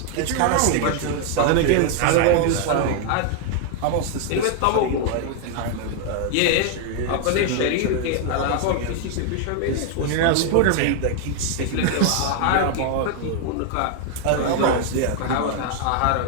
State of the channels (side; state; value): both; different; correlation 0.00